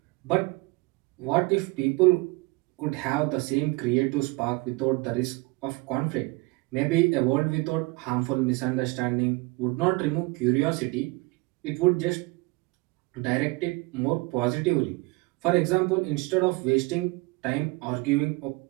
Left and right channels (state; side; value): quieter; left; 25.1 dB